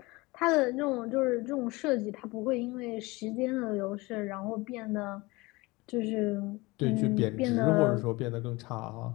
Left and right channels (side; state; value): right; quieter; 23.0 dB